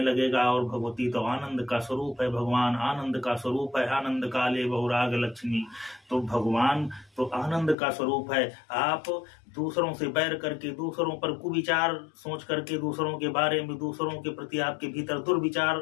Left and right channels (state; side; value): drops out; right; at 7.8 s